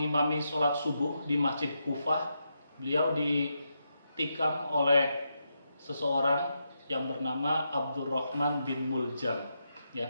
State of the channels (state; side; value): inverted; both; correlation -0.84